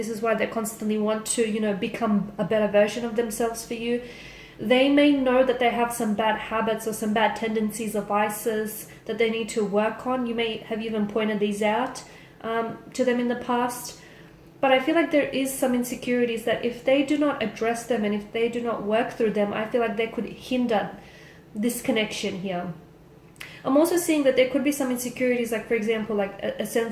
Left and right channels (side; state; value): both; identical; correlation 1.00